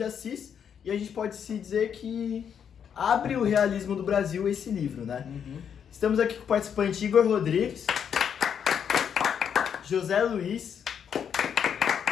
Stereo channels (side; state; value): right; quieter; 8.0 dB